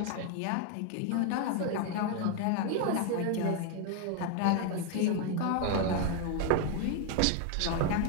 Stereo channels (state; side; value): different; both; correlation 0.01